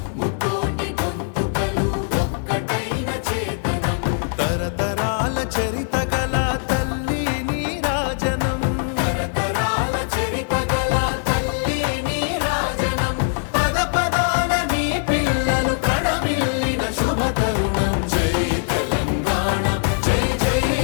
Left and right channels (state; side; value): silent; right; 65 dB below the other